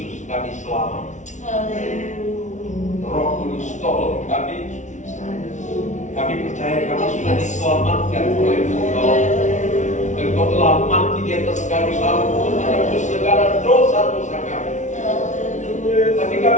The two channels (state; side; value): late; right; 0.36 ms